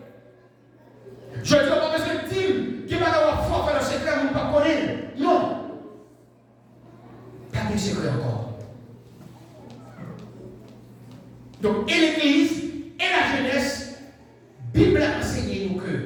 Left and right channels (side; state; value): both; identical; correlation 1.00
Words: Je ne dis pas parce que Tim, qui va avoir fort faire le secret, vous ne pas connaître. Non. Pas de secret encore. Donc, et l'église, et la jeunesse, Bible a enseigné nous que